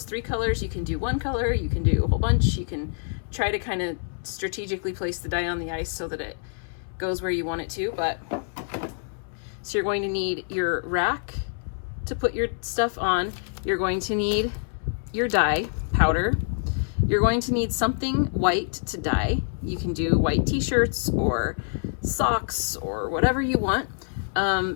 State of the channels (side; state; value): right; silent; 61 dB below the other